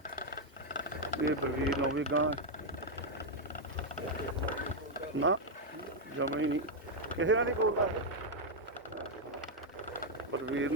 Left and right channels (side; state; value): both; normal; correlation -0.01